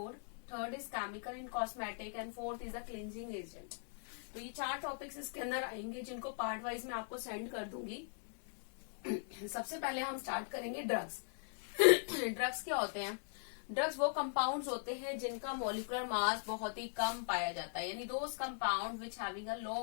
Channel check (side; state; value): right; silent; 51 dB below the other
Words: third is chemical in cosmetic and fourth is the cleansing agent. तो ये 4 टॉपिक्स इसके अंदर आएंगे जिनको पार्ट वाइज मैं आपको सेंड कर दूंगी। सबसे पहले हम स्टार्ट करेंगे ड्रग्स। ड्रग्स क्या होते हैं? ड्रग्स वो कंपाउंड्स होते हैं जिनका मॉलिक्यूलर मास बहुत ही कम पाया जाता है, यानी those compound which having a low